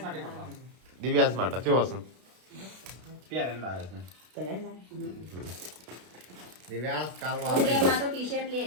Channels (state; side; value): late; left; 32 ms